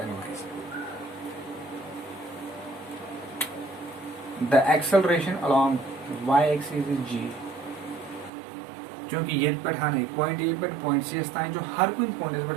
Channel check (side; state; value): left; drops out; at 8.3 s